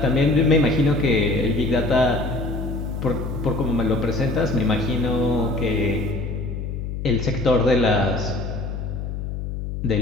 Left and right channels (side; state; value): left; noise; hum, 5 dB below the sound